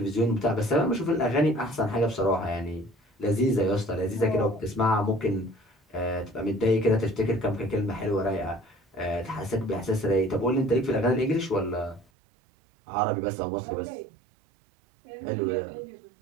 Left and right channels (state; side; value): drops out; left; at 12.1 s